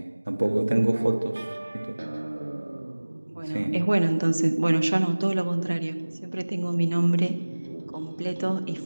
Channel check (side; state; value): both; inverted; correlation -1.00